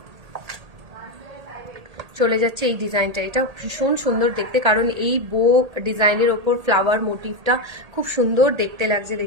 চলে যাচ্ছে এই ডিজাইনটা, এটা ভীষণ সুন্দর দেখতে, কারণ এই বো ডিজাইনের ওপর ফ্লাওয়ার মোটিভটা খুব সুন্দর দেখতে লাগছে।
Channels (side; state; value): left; late; 1.8 ms